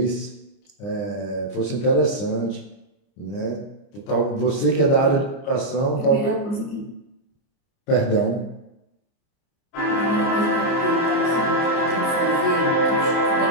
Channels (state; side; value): late; right; 29 ms